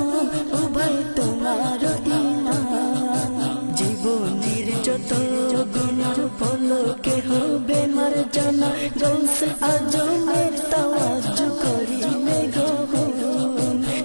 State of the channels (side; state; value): both; inverted; correlation -1.00